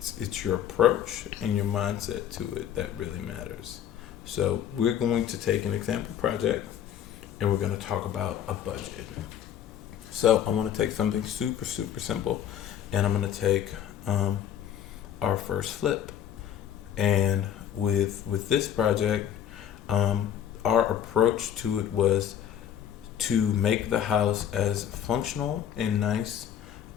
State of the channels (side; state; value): right; quieter; 9.8 dB